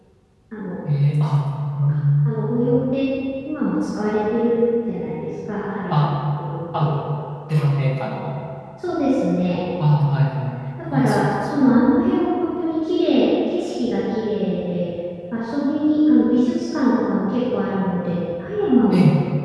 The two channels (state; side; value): identical; both; correlation 1.00